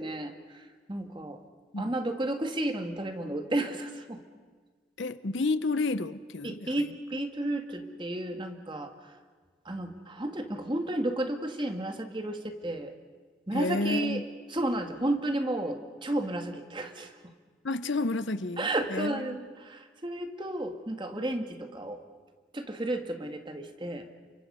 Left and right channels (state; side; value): normal; both; correlation 0.64